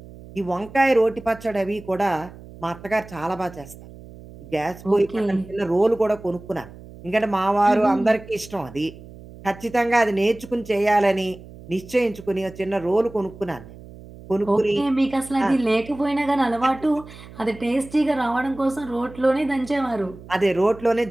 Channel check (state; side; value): noise; right; hum, 18 dB below the sound